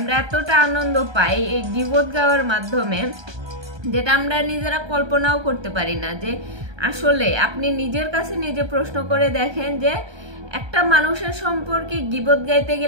এতটা আনন্দ পাই এই গীবত গাওয়ার মাধ্যমে, যেটা আমরা নিজেরা কল্পনাও করতে পারি না। যে আসলে আপনি নিজের কাছে নিজে প্রশ্ন করে দেখেন যে একটা মানুষের সম্পর্কে গীবত গাইতে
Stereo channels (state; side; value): late; left; 1.2 ms